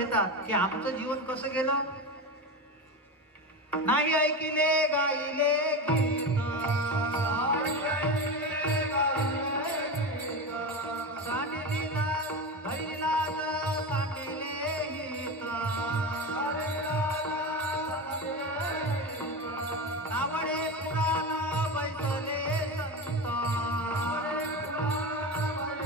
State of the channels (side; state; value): both; normal; correlation 0.21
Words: की आमचं जीवन कसं गेलं. नाही ऐकिले गाईले गीत,